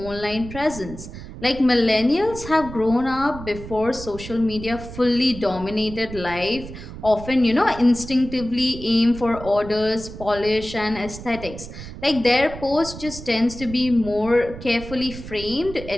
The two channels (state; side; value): noise; right; rumble, 12 dB below the sound